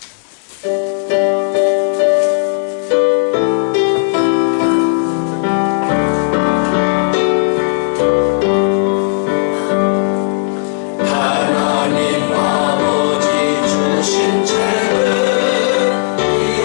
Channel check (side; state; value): right; silent; 70 dB below the other